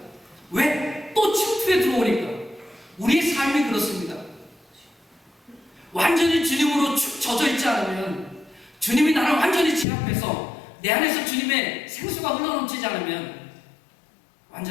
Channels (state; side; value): drops out; right; at 9.9 s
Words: 왜? 또 침투에 들어오니까. 우리의 삶이 그렇습니다. 완전히 주님으로 축 젖어 있지 않으면, 주님이 나를 완전히 제압해서 내 안에서 주님의 생수가 흘러넘치지 않으면